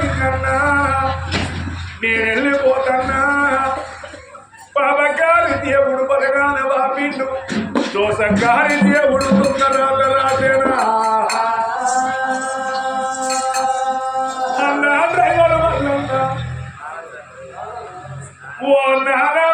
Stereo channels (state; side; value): identical; both; correlation 1.00